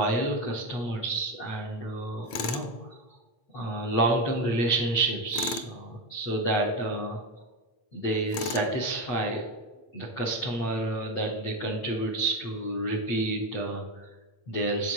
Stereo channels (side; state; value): right; late; 8.9 ms